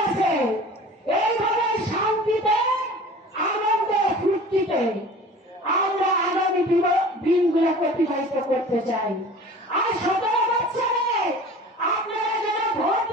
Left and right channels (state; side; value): normal; both; correlation 0.42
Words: আছে, এইভাবে শান্তিতে আনন্দে ফুর্তিতে আমরা আগামী দিনগুলোকে অতিবাহিত করতে চাই। আর 17 বছরে আপনারা যারা ভোট